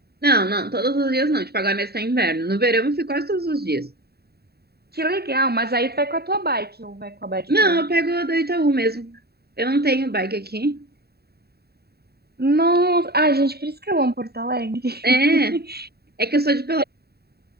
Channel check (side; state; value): left; late; 0.46 ms